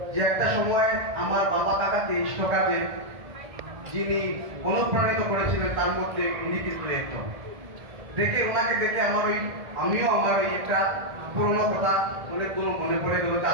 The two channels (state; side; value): late; left; 1.7 ms